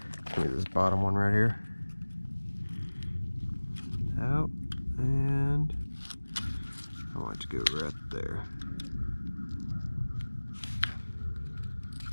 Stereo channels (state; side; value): inverted; both; correlation -1.00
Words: Give me this bottom one right here. out, and I want it to go right there.